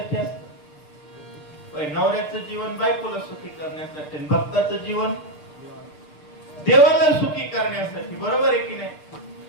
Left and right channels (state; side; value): late; right; 6.7 ms